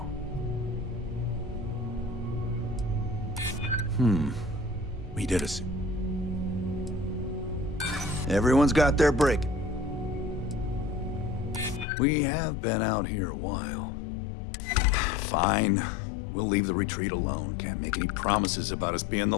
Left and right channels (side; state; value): right; drops out; at 11.9 s